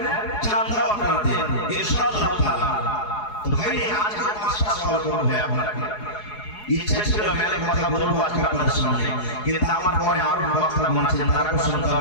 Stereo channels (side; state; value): right; late; 4.8 ms